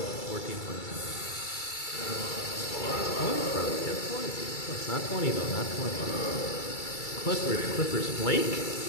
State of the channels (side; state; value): right; late; 2.3 ms